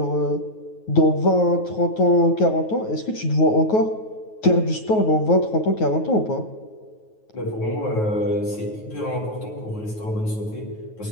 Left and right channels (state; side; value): late; right; 9.4 ms